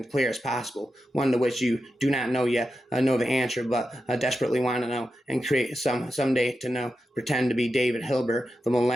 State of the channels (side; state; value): both; normal; correlation 0.89